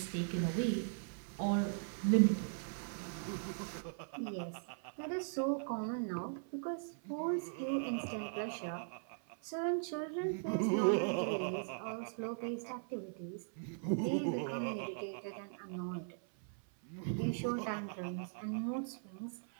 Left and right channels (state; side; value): silent; left; 52 dB below the other